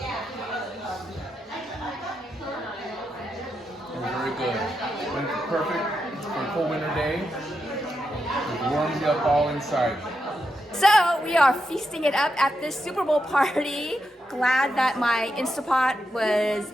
Very good. Perfect for a cold winter day. It warms you up all inside. So we are feasting it up at this Super Bowl party. Glad that my Instapot was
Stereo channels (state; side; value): normal; both; correlation 0.85